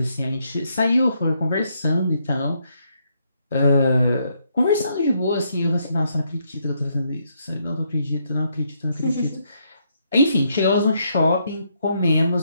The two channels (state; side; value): inverted; both; correlation -0.75